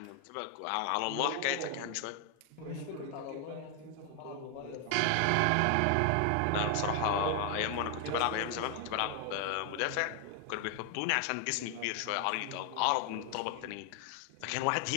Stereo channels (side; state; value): both; different; correlation 0.00